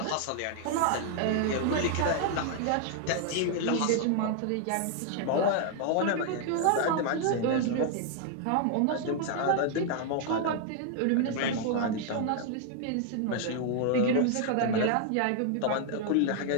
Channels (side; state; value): both; different; correlation 0.00